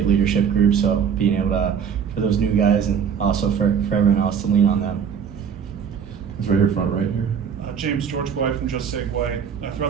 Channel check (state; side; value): quieter; left; 7.4 dB